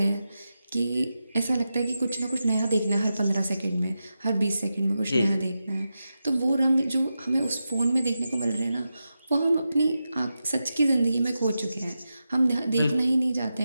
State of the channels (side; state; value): both; inverted; correlation -0.90